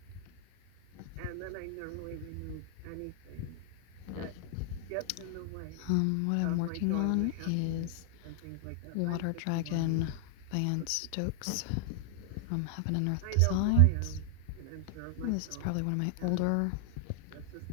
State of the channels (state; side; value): different; both; correlation -0.01